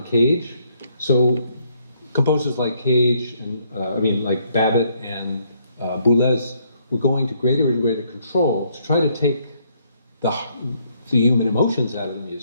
Cage. So composers like Cage, and like Babbitt and Boulez, were going to greater and greater control to try to take the human emotions out of the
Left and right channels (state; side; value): inverted; both; correlation -0.70